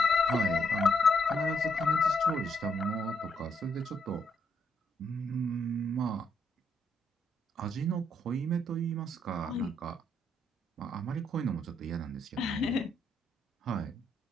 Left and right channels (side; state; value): both; normal; correlation 0.74